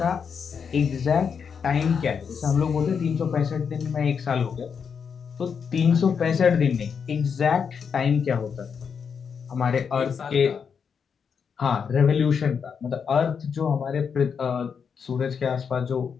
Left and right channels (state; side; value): quieter; right; 6.5 dB